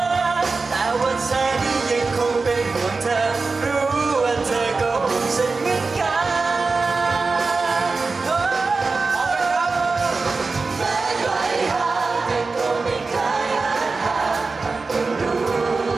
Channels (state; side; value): quieter; left; 4.1 dB